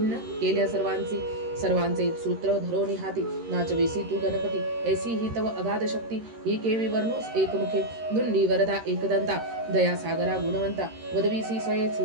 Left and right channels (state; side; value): late; left; 13 ms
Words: केल्या सर्वांचे सूत्र धरोनी हाती नाचवेसी तू गणपती ऐसी ही तव अगाध शक्ती ही केवी वर्णोस एकमुखे दुंडी वरदा एकदंता दया सागरा गुणवंता वदवीसी स्वये